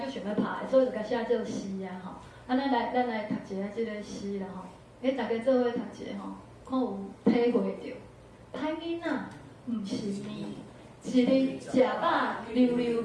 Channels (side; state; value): both; identical; correlation 1.00